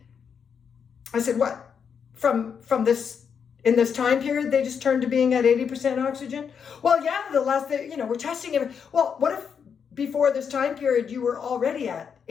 I said, what? From this, in this time period, they just turned to being at 80% oxygen? Well, yeah, we're testing it. Well, what if before this time period, you were already at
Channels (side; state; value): right; quieter; 6.9 dB